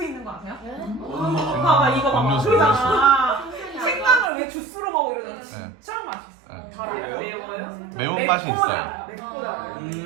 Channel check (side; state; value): left; drops out; at 4.3 s